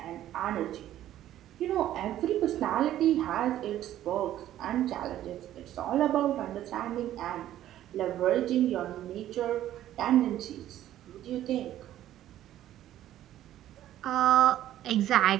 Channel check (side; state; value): left; quieter; 12.7 dB